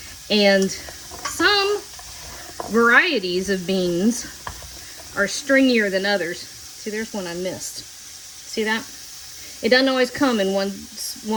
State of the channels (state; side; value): identical; both; correlation 1.00